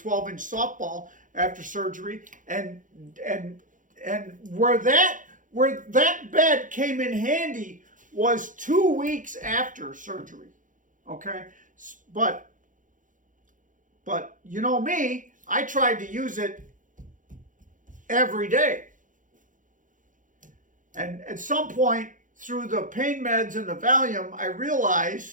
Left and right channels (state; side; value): late; left; 0.38 ms